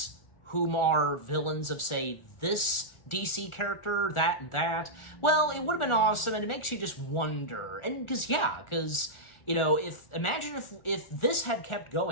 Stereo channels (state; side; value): late; right; 1.4 ms